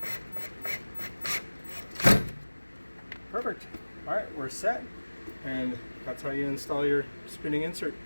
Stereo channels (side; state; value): both; inverted; correlation -1.00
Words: more. Perfect. All right, we're set. And that's how you install your spinning insert.